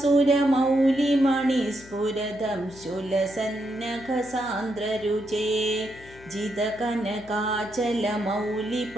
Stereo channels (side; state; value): left; noise; hum, 21 dB below the sound